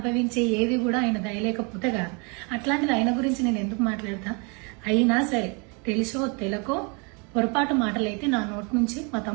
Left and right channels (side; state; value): left; quieter; 33.1 dB